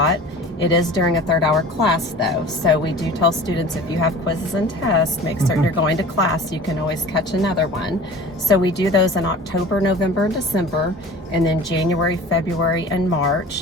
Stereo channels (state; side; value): normal; both; correlation 0.41